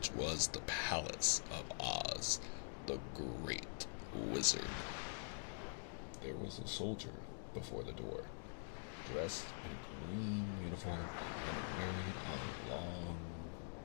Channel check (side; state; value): right; silent; digital silence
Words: was the Palace of Oz, the Great Wizard. There was a soldier before the door, dressed in a green uniform and wearing a long